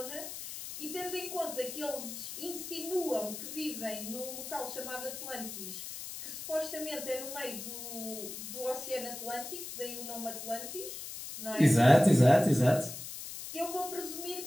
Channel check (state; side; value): noise; left; hiss, 9 dB below the sound